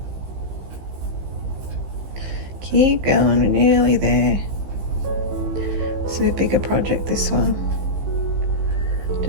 Keep going, we're nearly there. This is a bigger project, this one.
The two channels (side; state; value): left; late; 15 ms